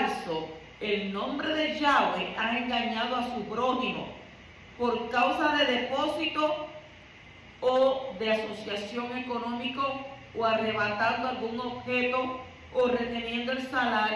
el nombre de Yahweh, ha engañado a su prójimo por causa de depósito o de asociación económico, o arrebatando algún objeto, o reteniendo el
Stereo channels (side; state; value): both; identical; correlation 1.00